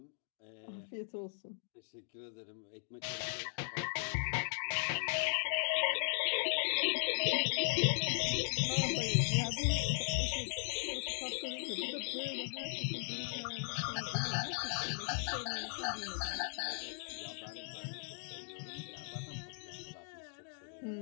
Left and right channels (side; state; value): right; silent; digital silence